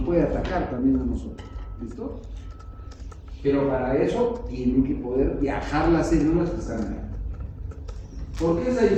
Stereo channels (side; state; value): both; identical; correlation 1.00